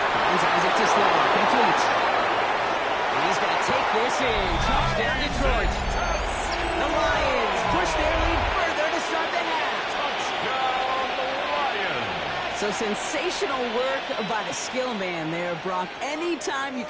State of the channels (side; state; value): both; identical; correlation 1.00